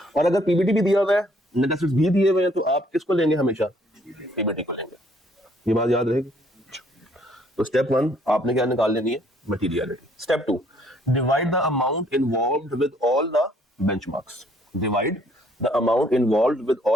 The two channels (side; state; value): both; normal; correlation 0.64